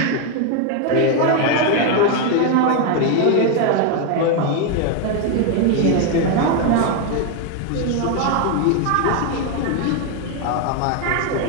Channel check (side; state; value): both; different; correlation 0.01